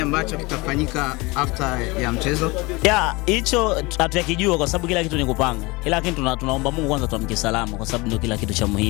ambacho kitafanyika after ya mchezo? Ya, hicho hatuyakijua kwa sababu kila kitu ni kupanga. Lakini tunaomba Mungu kwanza tuamke salama kwa sababu ndio kila kitu cha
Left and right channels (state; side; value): quieter; right; 24.4 dB